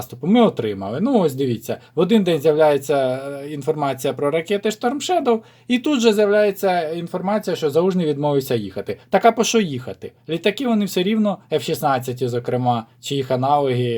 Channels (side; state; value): both; identical; correlation 1.00